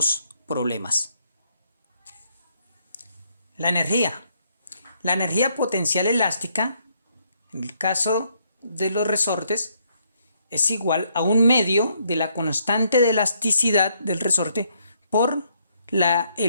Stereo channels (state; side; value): inverted; both; correlation -0.72